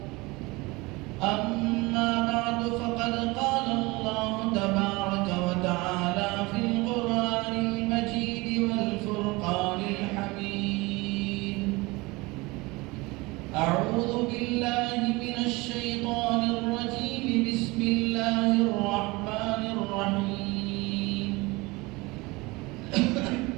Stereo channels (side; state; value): left; quieter; 23.4 dB